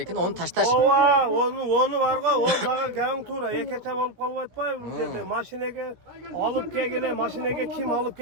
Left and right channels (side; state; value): left; late; 17 ms